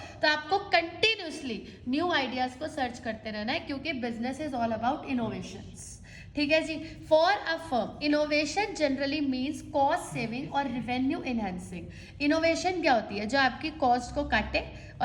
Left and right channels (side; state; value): both; identical; correlation 1.00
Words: तो आपको कंटिन्यूअसली न्यू आइडियाज को सर्च करते रहना है, क्योंकि business is all about innovations. ठीक है जी। For a firm innovation generally means cost saving और रिवेन्यू इनहेंसिंग। इनोवेशन क्या होती है, जो आपकी कॉस्ट को काटे